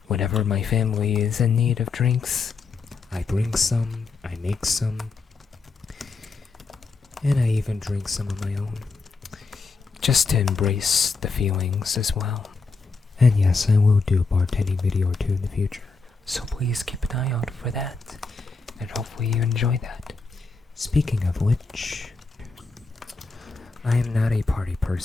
Whenever my family is in need of drinks, I bring some, I make some, and I even drink some of my own. just to embrace the feelings as well. And yes, I will do a bartending video or two in the future. So please keep an eye out for that, and hopefully you enjoy that. Speaking of which, I am not a party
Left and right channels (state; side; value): quieter; right; 4.3 dB